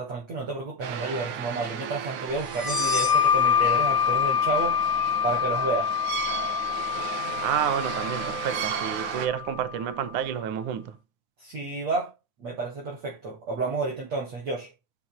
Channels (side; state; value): left; late; 9.5 ms